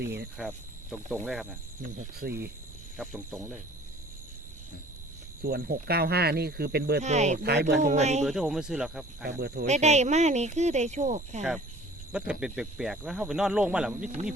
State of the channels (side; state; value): both; normal; correlation 0.49